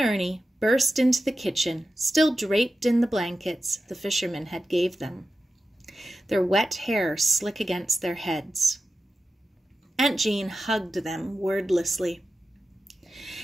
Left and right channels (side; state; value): both; normal; correlation 0.92